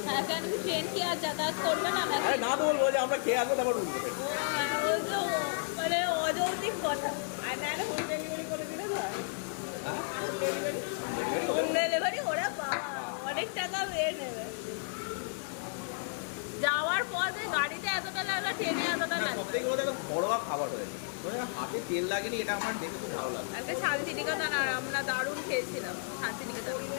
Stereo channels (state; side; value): silent; right; digital silence